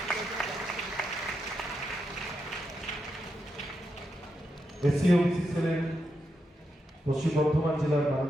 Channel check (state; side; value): normal; both; correlation 0.85